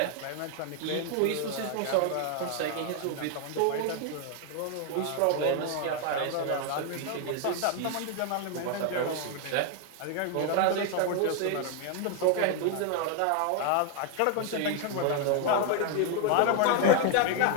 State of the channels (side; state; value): both; different; correlation 0.00